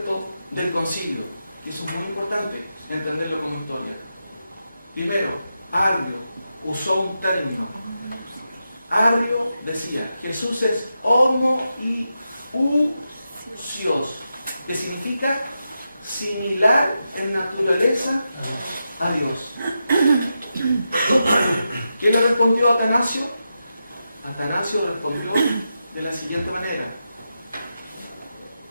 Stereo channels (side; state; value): both; inverted; correlation -0.88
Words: del concilio? Y eso es muy importante, entenderlo como historia. Primero, Arrio usó un término. Arrio decía, Jesús es homoiousios, que significa similar en naturaleza a Dios. ¿Quién le respondió a Atanasio? Atanasio respondió de la siguiente manera.